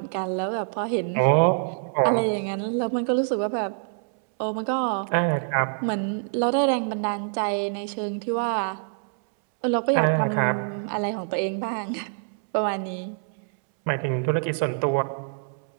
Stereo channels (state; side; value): silent; left; 61 dB below the other